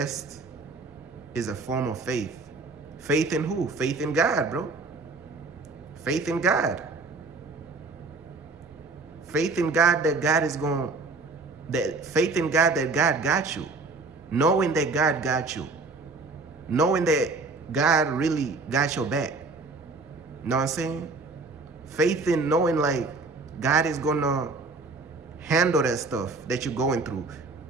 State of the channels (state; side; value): quieter; left; 3.8 dB